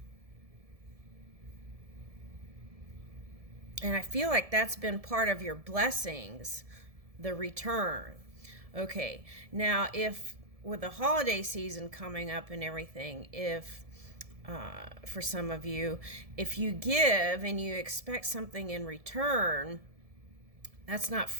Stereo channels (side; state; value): left; late; 1.7 ms